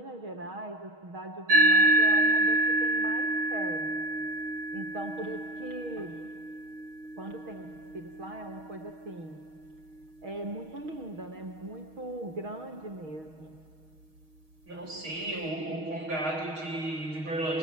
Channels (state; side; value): late; left; 6.4 ms